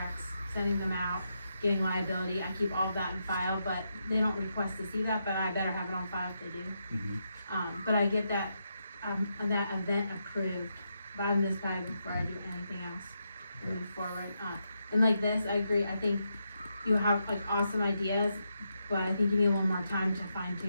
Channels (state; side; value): inverted; both; correlation -0.83